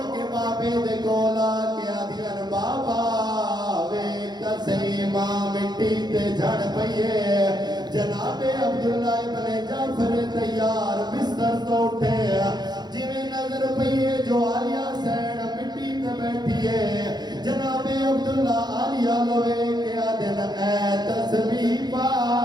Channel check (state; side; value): late; left; 0.20 ms